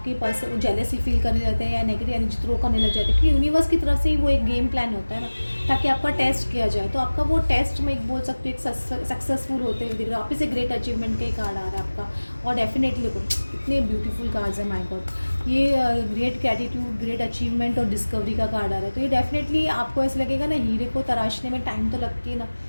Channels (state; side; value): inverted; both; correlation -1.00